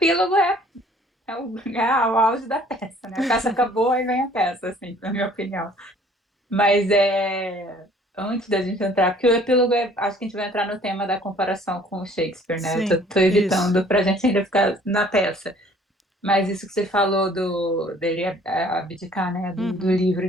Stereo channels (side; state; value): both; normal; correlation 0.56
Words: é o auge da peça, né? A peça acabou e vem a peça, assim, na minha opinião. Mas antes da gente entrar, porque o epílogo acho que a gente vai entrar no tema da comparação com o Shakespeare, né? Eu tô, sim, tô isso. evitando pra gente ainda ficar na peça. Mas isso que você falou dele abdicar, né? Do Uhum, livro